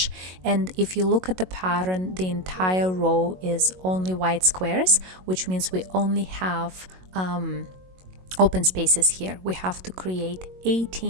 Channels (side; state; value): left; late; 22 ms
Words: And if you look at the pattern, the entire row is only white squares, which means we only have open spaces here. We have to create